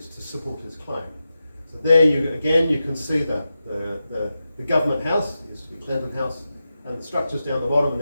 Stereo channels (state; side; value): inverted; both; correlation -0.91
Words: to support his claim. So there you can see the government house, it used to be Clinton House, and the structures down the bottom, and